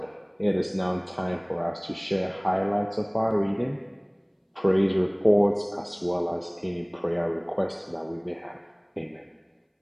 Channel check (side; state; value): both; identical; correlation 1.00